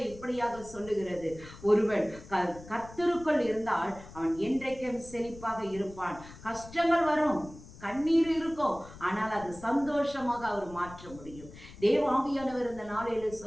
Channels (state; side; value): noise; left; rumble, 17 dB below the sound